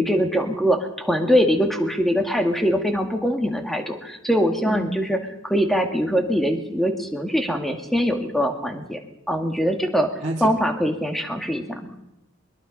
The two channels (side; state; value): both; normal; correlation 0.79